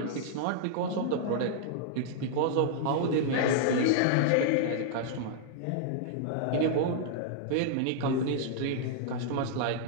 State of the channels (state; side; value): different; both; correlation -0.01